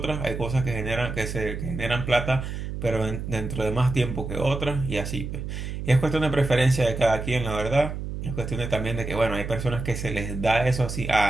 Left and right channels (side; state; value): right; noise; hum, 6 dB below the sound